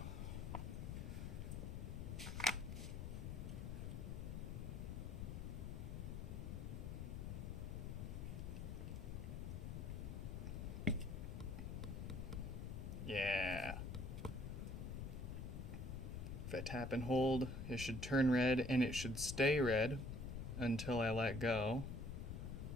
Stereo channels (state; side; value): noise; left; rumble, 4 dB below the sound